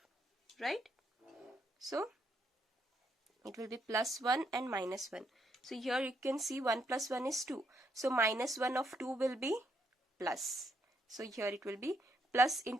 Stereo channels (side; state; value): both; normal; correlation 0.75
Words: right? So it will be +1 and -1. So here you can see 1 plus 1 is 2. So -1 of 2 will be plus. So here it will be plus